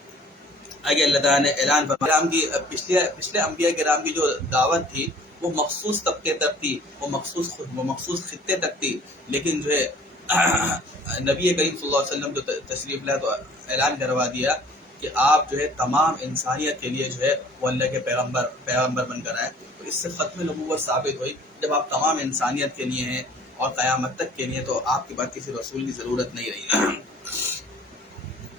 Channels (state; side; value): normal; both; correlation 0.52